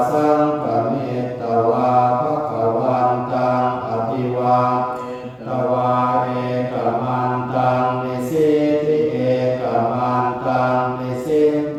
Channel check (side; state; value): both; identical; correlation 1.00